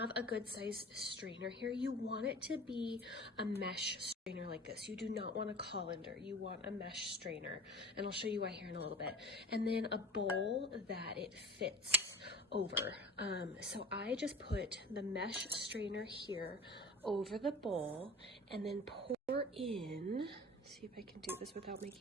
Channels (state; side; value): normal; both; correlation 0.40